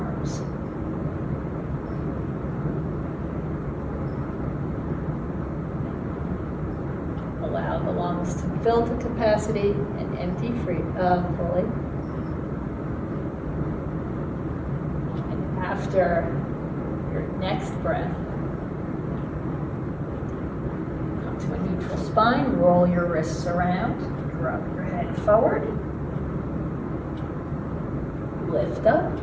Allow the lungs to fill to capacity and empty fully. And after your next breath, come to a neutral spine, roll your wrists around, drop your head forward, lift up,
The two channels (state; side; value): identical; both; correlation 1.00